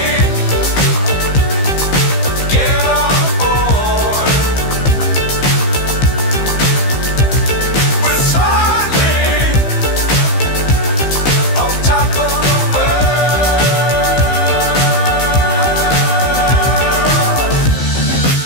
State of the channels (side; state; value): right; late; 15 ms